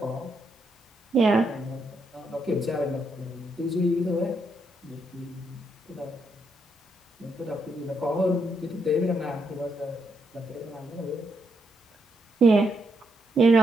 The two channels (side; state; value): both; normal; correlation 0.79